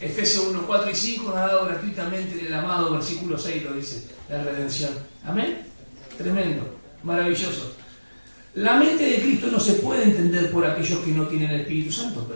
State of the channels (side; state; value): both; inverted; correlation -1.00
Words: Efesios 1, 4 y 5 nos ha dado gratuitamente el amado, versículo 6 lo dice, la redención. Amén. Tremendo, maravilloso. La mente de Cristo no se puede entender por aquellos que no tienen el Espíritu Santo.